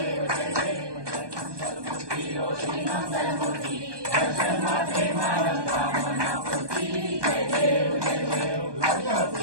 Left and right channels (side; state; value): left; late; 1.2 ms